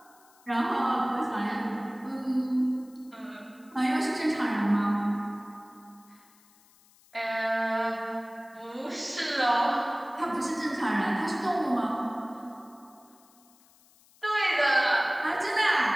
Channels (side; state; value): left; noise; hiss, 29 dB below the sound